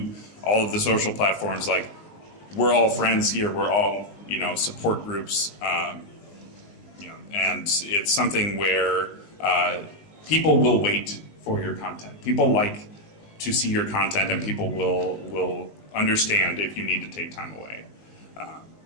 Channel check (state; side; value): late; right; 19 ms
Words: all of the social platforms, like, we're all friends here. We're all, support groups. And it's something where people will wait for your content. People like to see your content, and people will understand if you need to take time away.